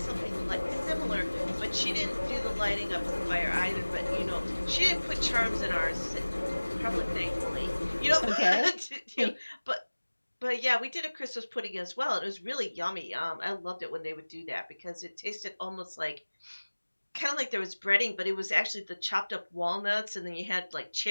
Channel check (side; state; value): both; inverted; correlation -1.00